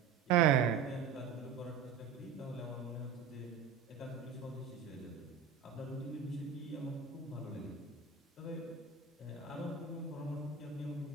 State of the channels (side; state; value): left; quieter; 6.5 dB